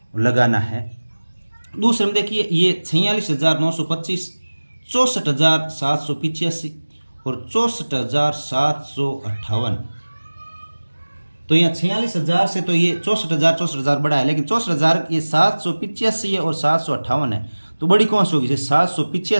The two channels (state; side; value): inverted; both; correlation -1.00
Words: लगाना है। दूसरे में देखिए, ये 46,925, 64,785 और 64,758। तो यहाँ 46,000 से तो ये 64,000 बड़ा है, लेकिन 64,000 ये 785 है और 758 है, तो बड़ी कौन सी होगी?